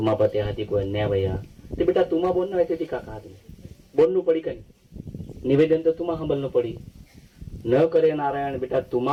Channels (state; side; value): identical; both; correlation 1.00